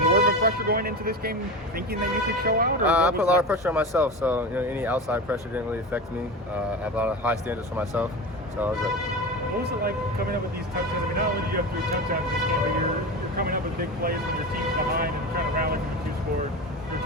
of a pressure going into this game, thinking that you could show out? Or I put a lot of pressure on myself, so any outside pressure didn't really affect me. I have a lot of high standards for myself, so I was good. What was it like coming up with these touchdowns? I mean, not only do you have 3 touchdowns in this game, but you're coming up with big plays when your team's behind and trying to rally from a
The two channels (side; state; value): both; normal; correlation 0.26